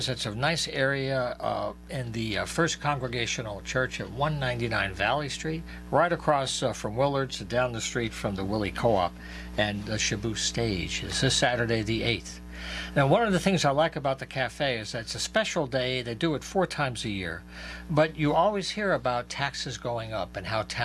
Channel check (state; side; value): identical; both; correlation 1.00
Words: It's a nice area in the First Congregational Church at 199 Valley Street, right across from Willard's, down the street from the Willie Co-op and the Shabu Stage. It's this Saturday the 8th. Now, one of the things I like about the cafe is that it's a special day. They do it 4 times a year. But you always hear about taxes going up and how